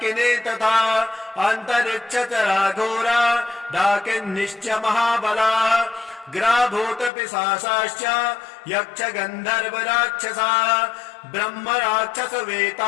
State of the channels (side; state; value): right; drops out; at 7.1 s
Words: तथा अन्तरिक्षचरा घोरा डाकिन्निश्च महाबलाः ग्राभूतपिशाचाश्च यक्ष गन्धर्व राक्षसाः ब्रह्म राक्षस